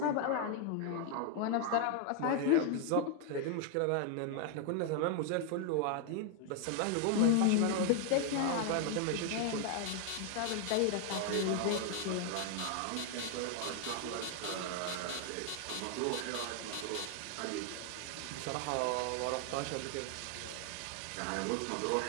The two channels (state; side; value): different; both; correlation 0.00